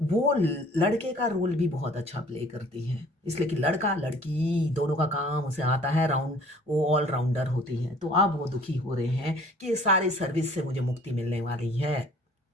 वो लड़के का रोल भी बहुत अच्छा प्ले करती है। इसलिए कि लड़का लड़की दोनों का काम उसे आता है, राउंड वो ऑल राउंडर होती है। तो अब वो दुखी हो रहे हैं कि ये सारी सर्विस से मुझे मुक्ति मिलने वाली है।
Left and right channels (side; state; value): both; normal; correlation 0.53